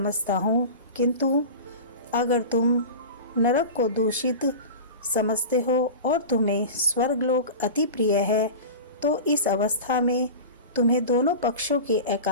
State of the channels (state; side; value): inverted; both; correlation -0.31